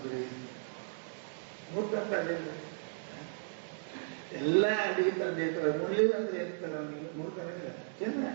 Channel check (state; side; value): silent; left; digital silence